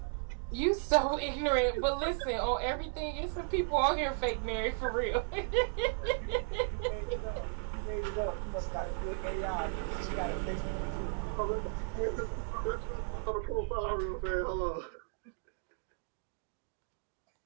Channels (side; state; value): left; silent; 54 dB below the other